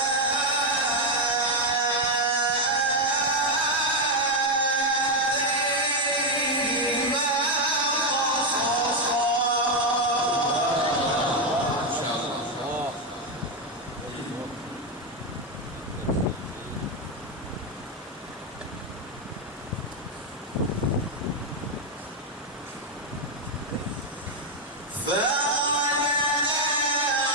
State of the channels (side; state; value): both; normal; correlation 0.05